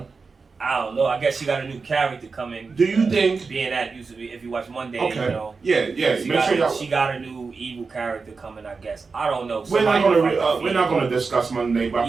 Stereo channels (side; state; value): left; quieter; 4.6 dB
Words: I don't know. I guess she got a new character coming. Do you think being that used to be if you watch Monday, Yeah. She got a new evil character coming. I guess I don't know. We're not gonna discuss Monday, but